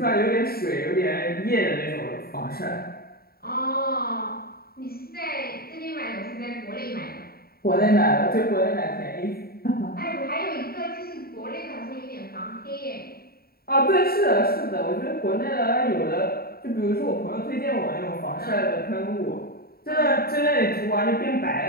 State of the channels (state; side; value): late; right; 0.44 ms